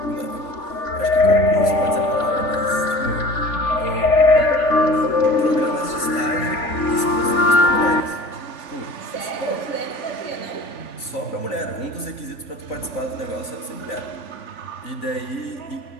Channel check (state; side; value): late; right; 3.5 ms